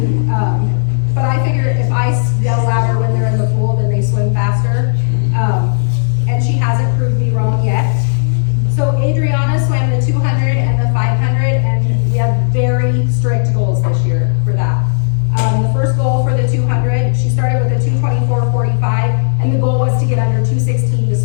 But I figure if I yell louder when they're in the pool, then they swim faster. And she hasn't proved me wrong yet. So Adriana swam the 200 and the 500 and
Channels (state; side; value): silent; right; digital silence